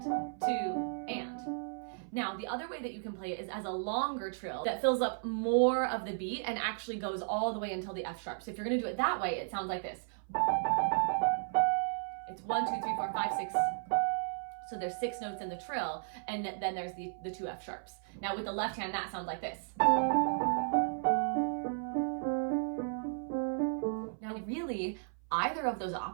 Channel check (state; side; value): silent; left; 55 dB below the other